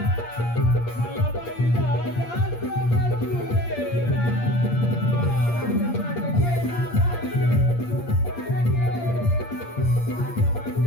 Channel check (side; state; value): right; late; 8.6 ms